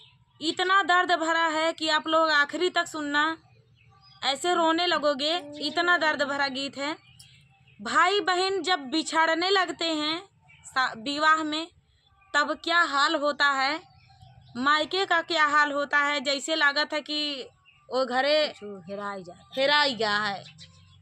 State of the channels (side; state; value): both; identical; correlation 1.00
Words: इतना दर्द भरा है कि आप लोग आखिरी तक सुनना, ऐसे रोने लगोगे। इतना दर्द भरा गीत है। भाई बहन जब बिछड़ने लगते हैं विवाह में, तब क्या हाल होता है, मायके का क्या हाल होता है। जैसे लागत है कि वो घरे हेराई गया है।